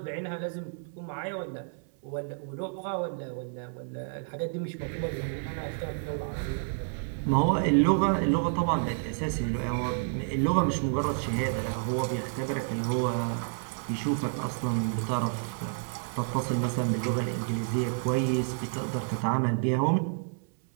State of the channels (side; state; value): left; silent; 58 dB below the other